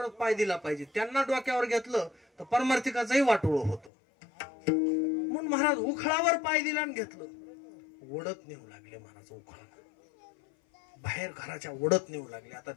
पाय दिला पाहिजे. त्यांना डोक्यावर घेतलं तर पारमार्थिकाचंही वाटोळ होतं. म्हणून महाराज उखळावर पाय दिला आणि घेतलं. ओढत नेऊ लागले महाराज उखळा, बाहेर घराच्या ओढत नेऊ लागले. आता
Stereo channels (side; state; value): right; drops out; at 3.9 s